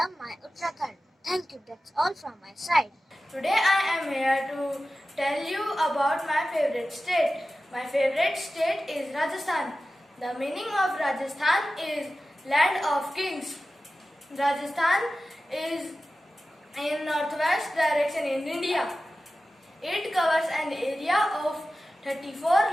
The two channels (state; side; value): normal; both; correlation 0.95